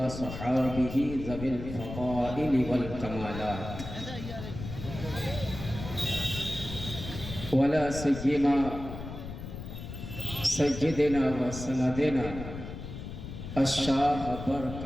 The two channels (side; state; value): left; noise; rumble, 9 dB below the sound